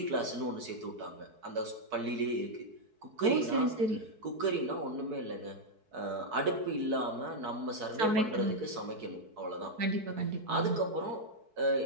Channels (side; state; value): left; late; 4.6 ms